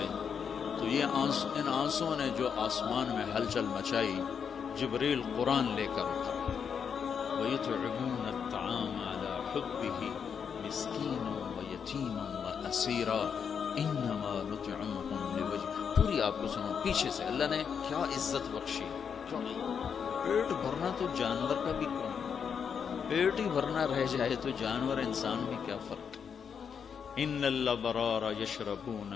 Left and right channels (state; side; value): quieter; right; 7.0 dB